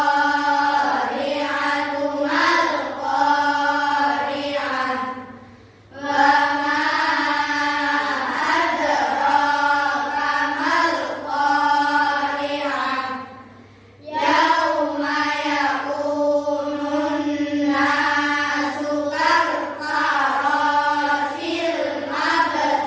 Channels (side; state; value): both; identical; correlation 1.00